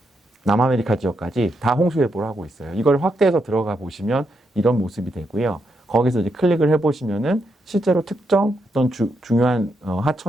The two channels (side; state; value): both; normal; correlation 0.81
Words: 남아메리카 지역까지 다 홍수 예보를 하고 있어요. 이걸 확대해서 들어가 보시면 이런 모습이 되고요. 거기서 이제 클릭을 해보시면은 실제로 특정 어떤 중요한